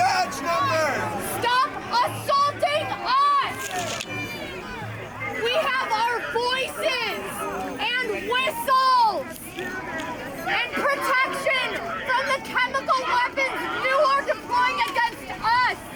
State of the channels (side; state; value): both; identical; correlation 1.00